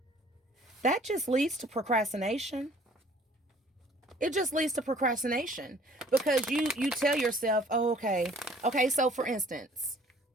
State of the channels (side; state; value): both; normal; correlation 0.54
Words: that just leads to procrastination. It just leads to procrastination because you tell yourself, oh, okay. So for instance,